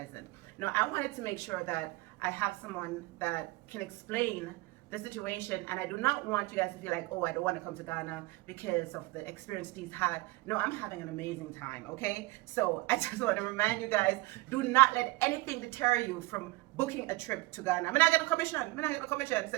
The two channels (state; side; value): quieter; left; 21.4 dB